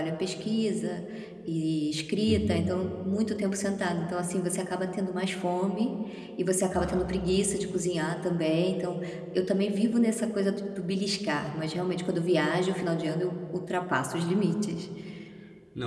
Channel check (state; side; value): identical; both; correlation 1.00